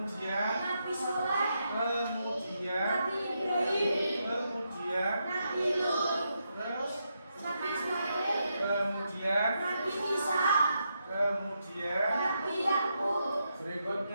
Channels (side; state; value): both; inverted; correlation -0.82